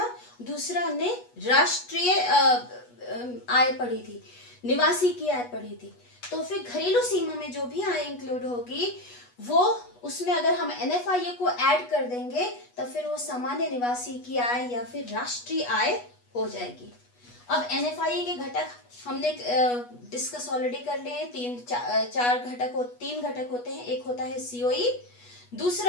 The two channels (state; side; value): late; right; 8.2 ms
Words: दूसरा हमने राष्ट्रीय आय पढ़ी थी, निवासी की आय पढ़ी थी। तो फिर घरेलू सीमा में जो भी आय इंक्लूड होगी वो, उसमें अगर हम NFIA को ऐड कर देंगे तो फिर वो सामान्य निवासी की आय या फिर राष्ट्रीय आय हो जाएगी। अब NFIA के घटक हमने डिस्कस ऑलरेडी कर लिए हैं। 3 घटक होते हैं। एक होता है COE,